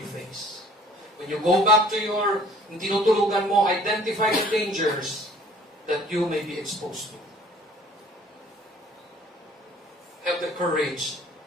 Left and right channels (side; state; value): both; normal; correlation 0.54